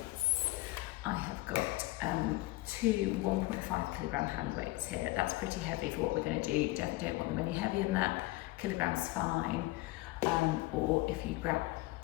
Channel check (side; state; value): right; quieter; 19.8 dB